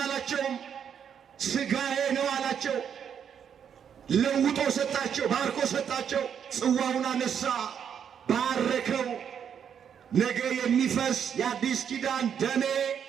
ሥጋዬ ነው አላቸው። ለውጦ ሰጣቸው፣ ባርኮ ሰጣቸው። ጽዋውን አነሳ፣ ባረከው። ነገ የሚፈስ የአዲስ ኪዳን ደሜ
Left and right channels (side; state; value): left; quieter; 8.1 dB